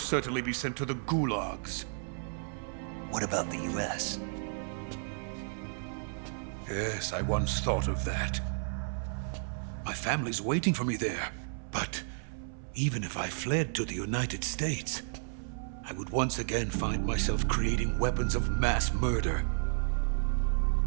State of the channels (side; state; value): left; silent; 56 dB below the other